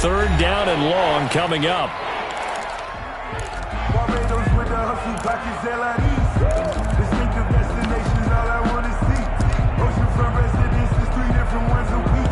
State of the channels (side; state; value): both; identical; correlation 1.00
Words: down and long coming up.